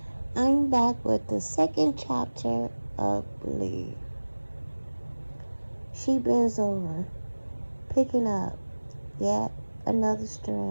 I'm back with the second chapter of Believe. She bends over, picking up yet another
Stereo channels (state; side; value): inverted; both; correlation -1.00